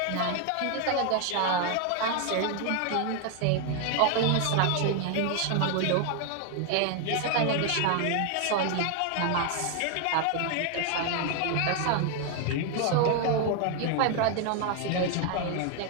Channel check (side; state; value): both; different; correlation 0.01